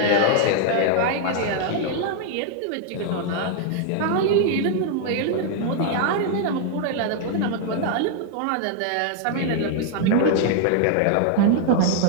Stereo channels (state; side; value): different; both; correlation 0.00